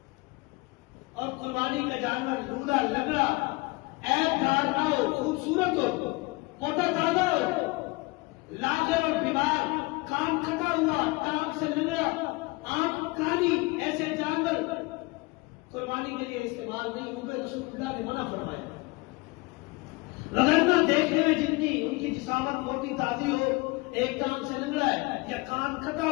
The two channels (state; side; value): quieter; right; 24.4 dB